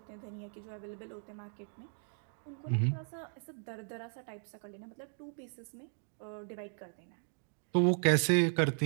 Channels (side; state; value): left; silent; 53 dB below the other